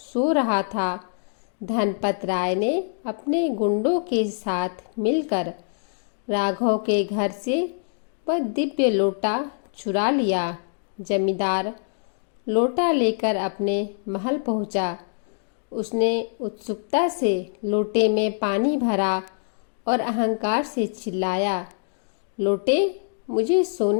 रहा था, धनपत राय ने अपने गुंडों के साथ मिलकर राघव के घर से वह दिव्य लोटा चुरा लिया। जमींदार लोटा लेकर अपने महल पहुंचा। उसने उत्सुकता से लोटे में पानी भरा और अहंकार से चिल्लाया, लोटे, मुझे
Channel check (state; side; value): silent; right; digital silence